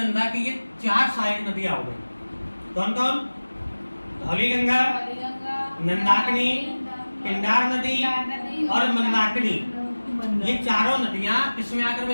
की ये 4 सहायक नदियां हो गई। कौन कौन? धौली गंगा, नंदाकिनी, पिंडार नदी और मंदाकिनी। ये चारों नदियां किसमें आकर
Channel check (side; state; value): both; inverted; correlation -1.00